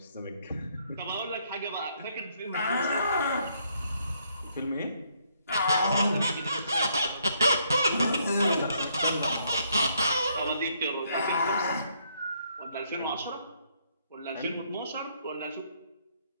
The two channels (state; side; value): inverted; both; correlation -0.71